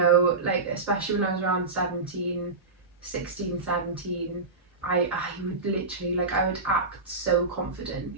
like, especially when I was around 16, 17, I would literally, like, I would act so confident.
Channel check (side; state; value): left; quieter; 3.8 dB